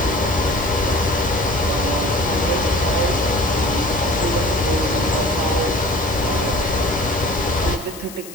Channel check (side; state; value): left; noise; hiss, 16 dB below the sound